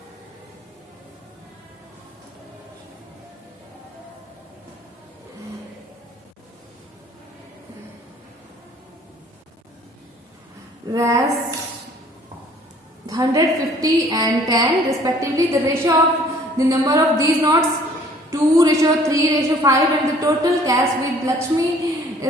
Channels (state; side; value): normal; both; correlation 0.55